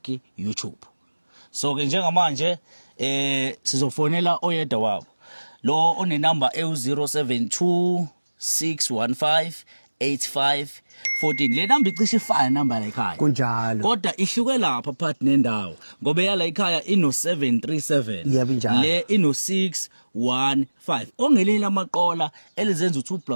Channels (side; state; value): both; inverted; correlation -1.00